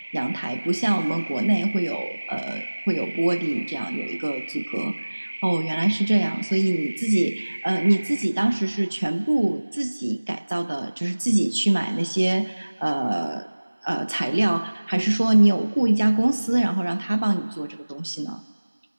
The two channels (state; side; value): inverted; both; correlation -1.00